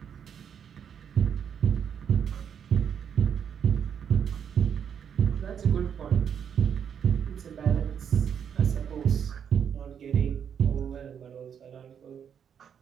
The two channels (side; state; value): left; quieter; 8.0 dB